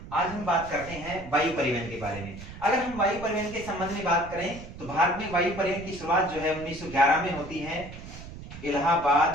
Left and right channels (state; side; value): noise; right; rumble, 13 dB below the sound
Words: आज हम बात करते हैं वायु परिवहन के बारे में। अगर हम वायु परिवहन के संबंध में बात करें तो भारत में वायु परिवहन की शुरुआत जो है 1911 में होती है,